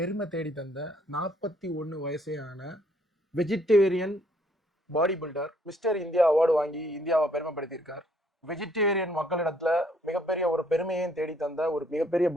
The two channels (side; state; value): both; normal; correlation 0.66